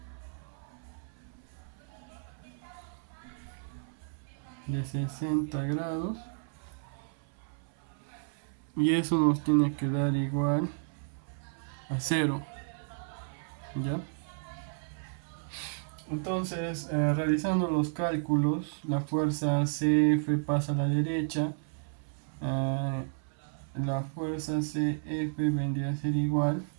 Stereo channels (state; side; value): silent; left; 56 dB below the other